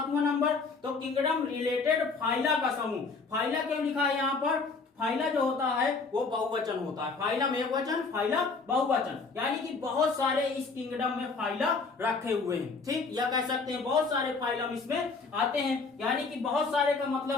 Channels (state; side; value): quieter; right; 4.3 dB